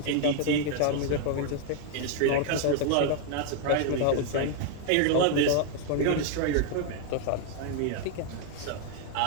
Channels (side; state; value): both; different; correlation 0.00